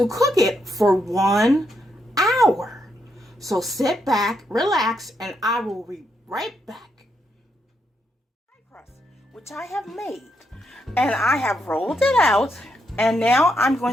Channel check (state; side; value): normal; both; correlation 0.80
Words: cook it for 1 hour. So sit back, relax, and I will be right back. Pie crust, which I have made. And I have rolled it out. And now I'm